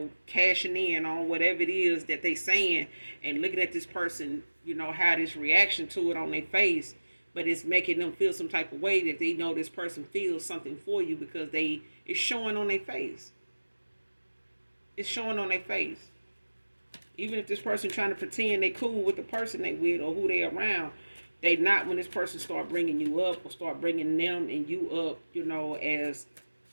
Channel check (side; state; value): both; inverted; correlation -1.00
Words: cashing in on whatever it is that they saying, and looking at this person, how this reaction to it on their face, but it's making them feel some type of way that they know this person feels something for you because it's showing on their face. It's showing on their face. Even if this person trying to pretend they cool with the person they with or who they around, they not when this person start bringing you up or start bringing them and you up, as